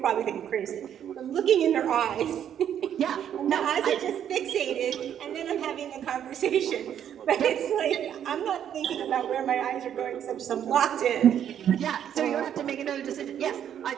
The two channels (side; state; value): left; quieter; 9.6 dB